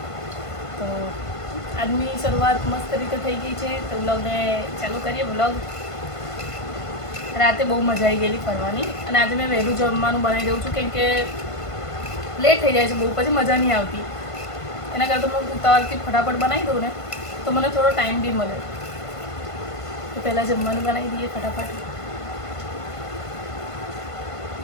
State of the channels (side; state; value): right; late; 1.5 ms